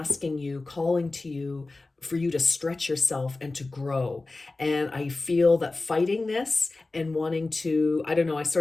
you, calling to you for you to stretch yourself and to grow. And I feel that fighting this and wanting to, I don't know, I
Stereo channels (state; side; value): quieter; right; 3.3 dB